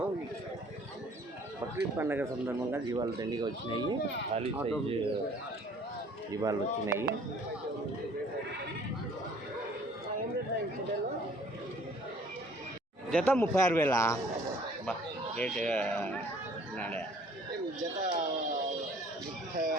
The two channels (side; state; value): both; normal; correlation 0.55